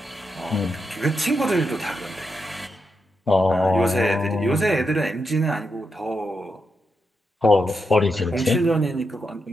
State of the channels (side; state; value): both; normal; correlation 0.85